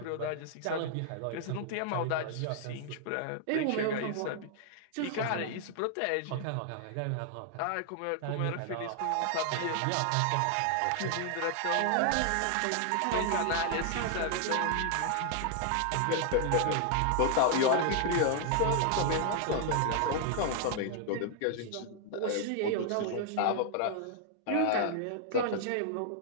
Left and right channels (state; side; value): different; both; correlation 0.00